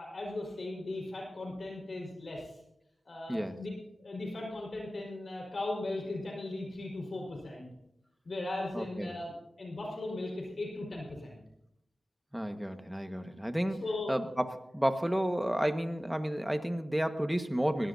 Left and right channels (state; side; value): normal; both; correlation 0.97